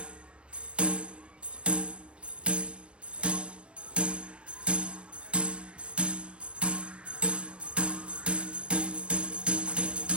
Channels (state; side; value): late; left; 0.059 ms